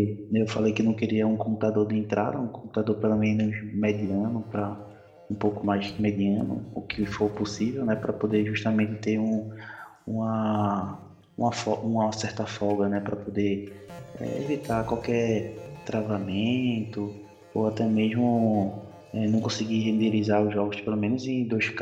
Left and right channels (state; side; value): identical; both; correlation 1.00